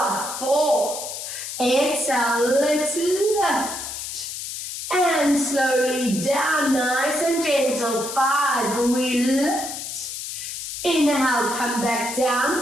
4. Exhale, let's lift. And slowly down, nice and gentle, 5. We lift. Inhale, come back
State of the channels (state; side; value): noise; left; hiss, 7 dB below the sound